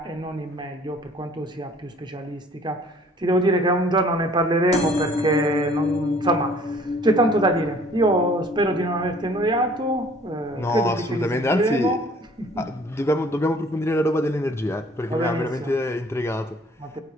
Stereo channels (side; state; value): both; normal; correlation 0.55